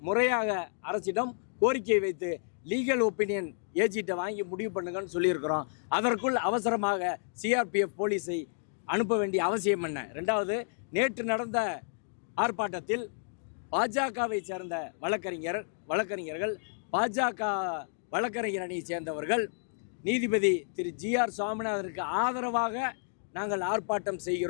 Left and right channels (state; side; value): silent; right; digital silence